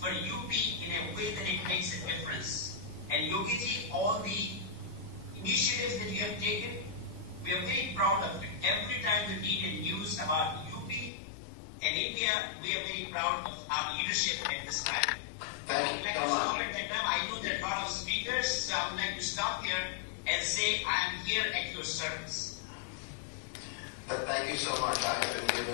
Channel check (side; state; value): right; drops out; at 11.1 s